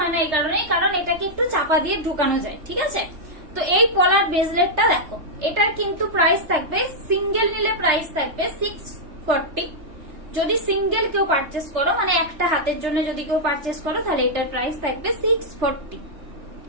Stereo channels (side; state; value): left; late; 3.3 ms